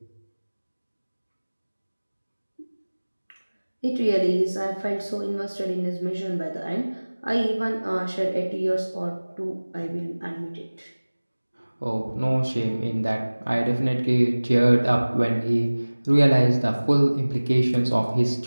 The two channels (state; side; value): inverted; both; correlation -1.00